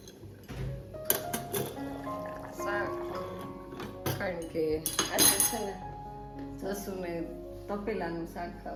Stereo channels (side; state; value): both; identical; correlation 1.00